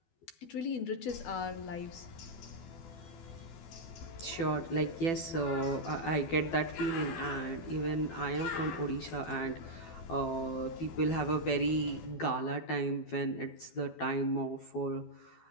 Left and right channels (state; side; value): late; right; 12 ms